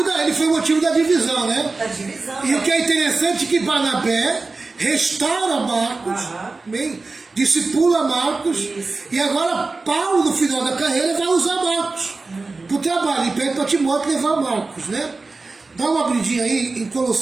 da divisão, né? Da divisão. E o que é interessante é que Barnabé restaura Marcos, bem, discipula Marcos, e agora Paulo, no final da carreira, vai usar Marcos para o trabalho, e pede para Timóteo levar Marcos, né? Dá uma abridinha aí em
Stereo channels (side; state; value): left; quieter; 3.7 dB